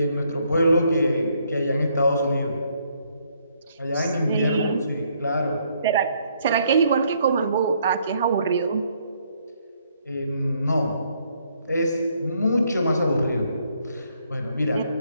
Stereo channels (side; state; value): both; inverted; correlation -0.70